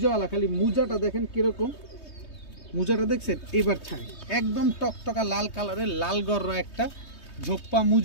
খালি মুজাটা দেখেন কিরকম, মুজাটা দেখছেন, এবার ছাড়ি একদম টকটকা লাল কালারের লাল গররা একটা ঝোপ্পা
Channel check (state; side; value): late; right; 3.2 ms